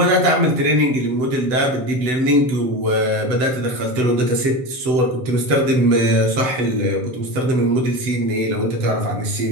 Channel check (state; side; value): late; left; 7.9 ms